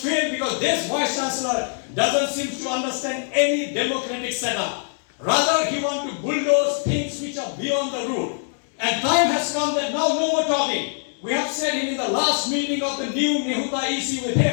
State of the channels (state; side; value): silent; right; 63 dB below the other